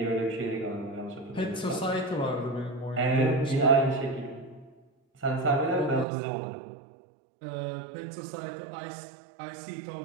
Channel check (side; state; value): left; drops out; at 6.1 s